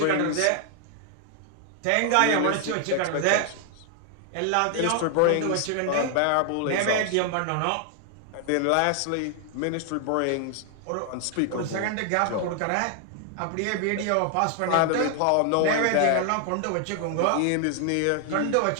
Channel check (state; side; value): different; both; correlation 0.00